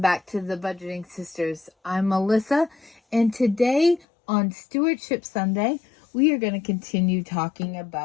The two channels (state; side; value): drops out; right; at 4.0 s